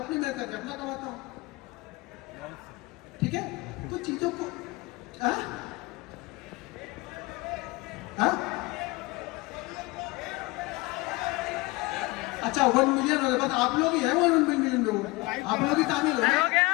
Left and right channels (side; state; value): right; quieter; 22.4 dB